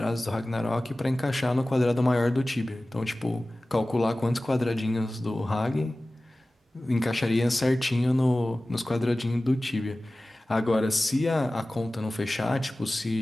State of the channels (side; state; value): both; normal; correlation 0.97